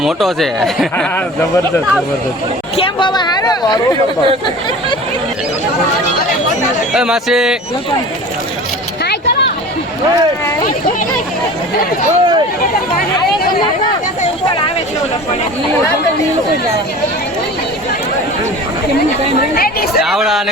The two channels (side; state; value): both; normal; correlation 0.39